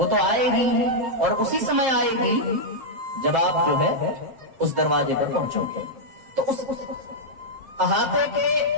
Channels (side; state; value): left; late; 7.6 ms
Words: तो आएगी और उसी समय आएगी जब आप जो है उस दरवाजे पर पहुंचोगे। तो उस अहाते के